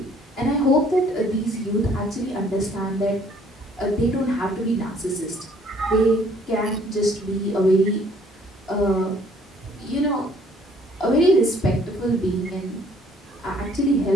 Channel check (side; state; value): both; normal; correlation 0.60